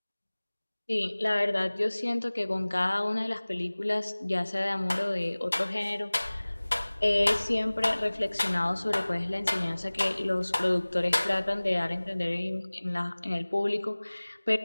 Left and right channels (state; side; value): inverted; both; correlation -1.00